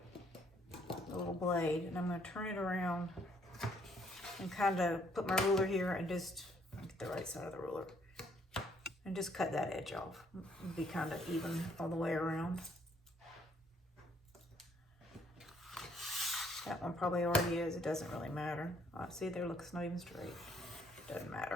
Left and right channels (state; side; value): normal; both; correlation 0.67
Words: a little blade, and I'm going to turn it around and kind of put my ruler here and just get the right side of the ruler and just cut that edge off. It'll be kind of even all the way around. That one probably already is. It doesn't really matter. See there, look, it's not even straight. Doesn't